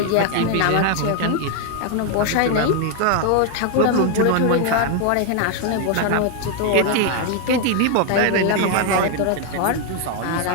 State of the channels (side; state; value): both; different; correlation 0.00